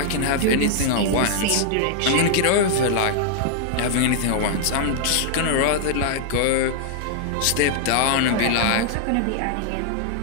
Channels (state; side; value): different; both; correlation -0.01